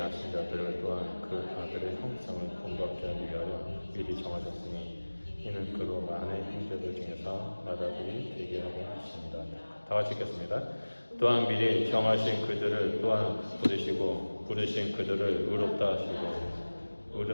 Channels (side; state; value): both; inverted; correlation -1.00